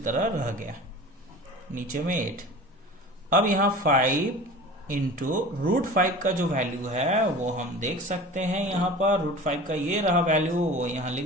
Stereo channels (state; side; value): normal; both; correlation 0.38